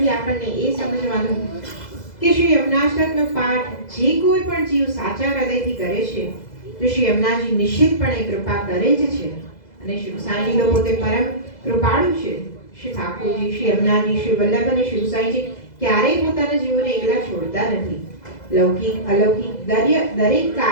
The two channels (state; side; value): late; right; 2.0 ms